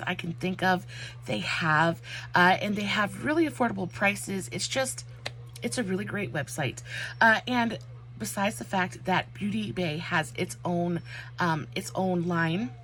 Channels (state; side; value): identical; both; correlation 1.00